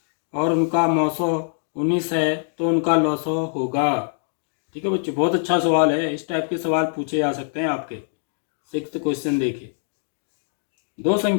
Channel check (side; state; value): right; silent; digital silence